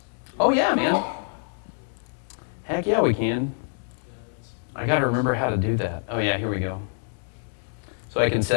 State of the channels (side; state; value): right; silent; digital silence